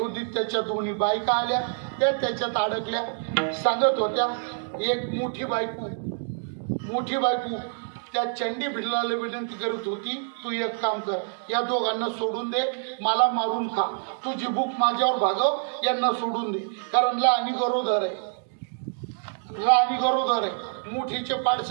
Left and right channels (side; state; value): left; silent; digital silence